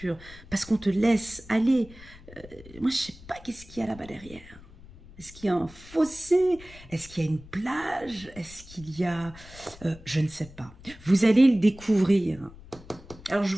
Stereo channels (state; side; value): noise; left; rumble, 20 dB below the sound